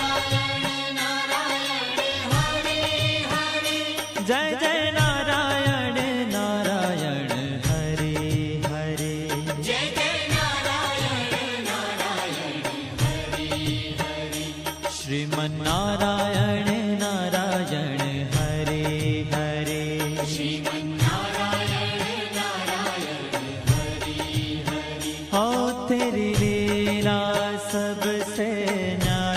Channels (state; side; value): identical; both; correlation 1.00